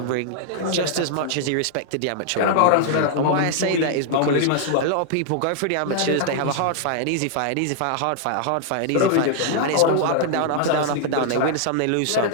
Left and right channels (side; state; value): both; different; correlation -0.01